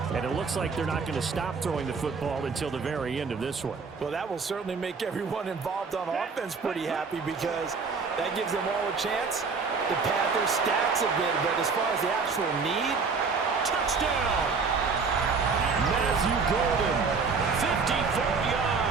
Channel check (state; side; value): quieter; left; 4.9 dB